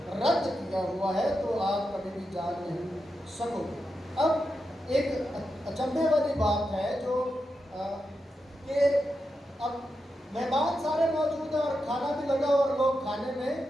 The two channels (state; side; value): normal; both; correlation 0.87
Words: رد کیا ہوا ہے، تو آپ کبھی بھی جان نہیں سکو گے۔ اب ایک اچنبھے والی بات ہے جو کہ اب مہمان سارے موجود ہیں اور کھانا بھی لگا اور لوگ کھانے میں